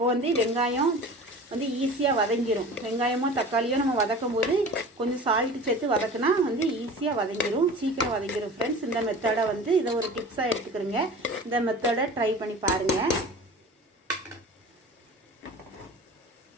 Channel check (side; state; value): both; normal; correlation 0.38